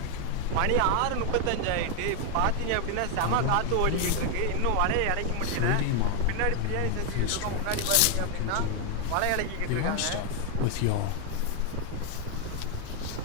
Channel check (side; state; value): both; different; correlation 0.00